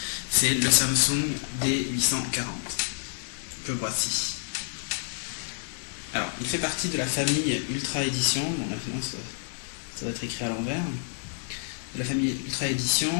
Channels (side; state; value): right; silent; digital silence